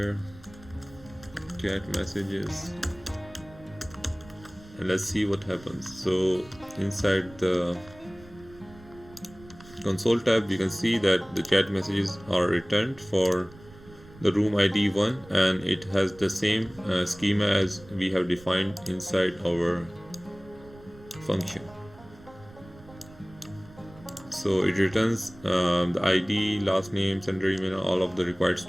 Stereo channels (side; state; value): right; noise; rumble, 21 dB below the sound